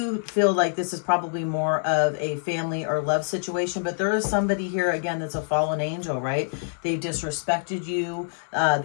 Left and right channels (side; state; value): right; silent; 61 dB below the other